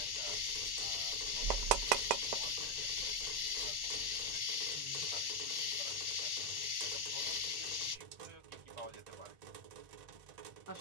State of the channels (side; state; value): left; late; 1.1 ms